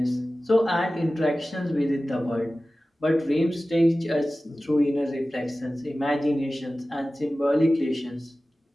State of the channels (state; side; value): normal; both; correlation 0.96